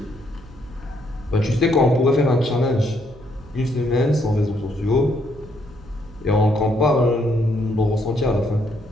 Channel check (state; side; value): noise; right; hum, 21 dB below the sound